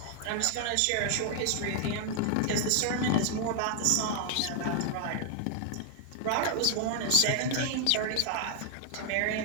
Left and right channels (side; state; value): both; different; correlation 0.00